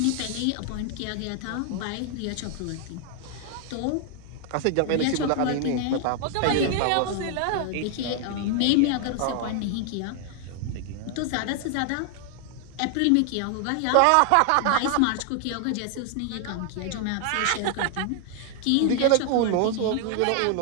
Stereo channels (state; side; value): different; both; correlation 0.00